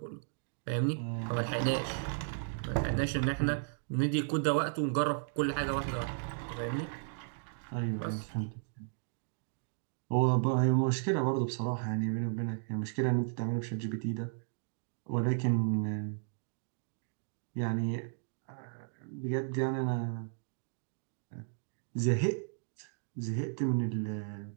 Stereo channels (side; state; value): left; silent; digital silence